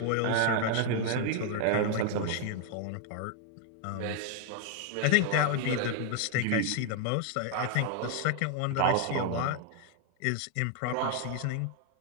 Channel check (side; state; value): both; different; correlation 0.00